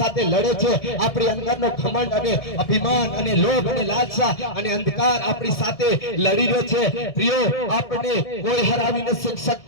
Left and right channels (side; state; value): right; late; 1.7 ms